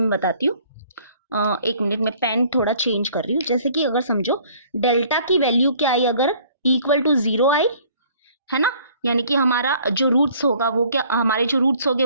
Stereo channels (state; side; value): inverted; both; correlation -0.56